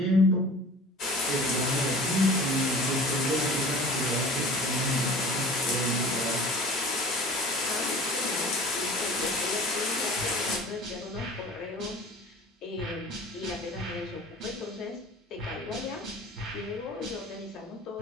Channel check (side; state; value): both; normal; correlation 0.42